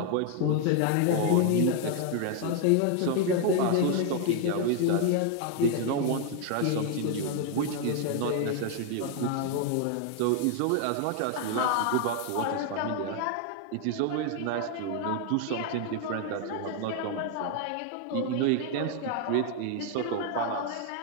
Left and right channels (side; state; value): both; different; correlation 0.00